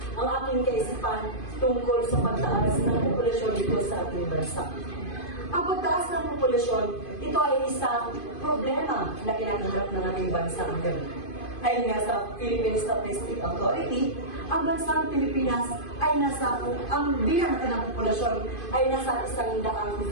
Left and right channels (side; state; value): right; late; 2.5 ms